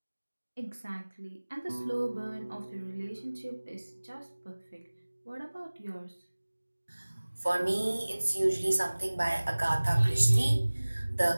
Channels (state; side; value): inverted; both; correlation -1.00